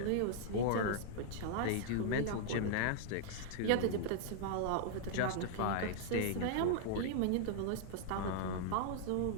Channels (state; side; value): different; both; correlation -0.01